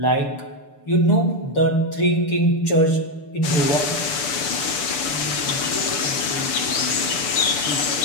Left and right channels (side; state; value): right; late; 6.9 ms